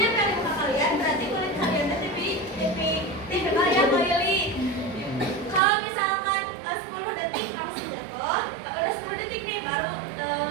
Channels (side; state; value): left; drops out; at 5.6 s